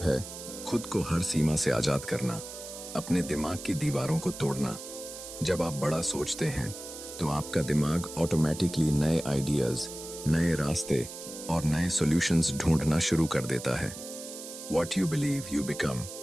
है खुद को हर सीमा से आजाद करना, अपने दिमाग की दीवारों को तोड़ना। जब आप बड़ा सोचते हैं तो आपका दिमाग ऑटोमेटिकली नए आइडियाज, नए रास्ते और नए सॉल्यूशंस ढूंढना शुरू कर देता है। What you believe you become।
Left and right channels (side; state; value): right; noise; hiss, 11 dB below the sound